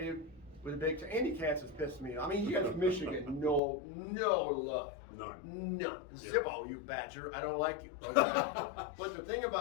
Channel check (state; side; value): drops out; right; at 3.6 s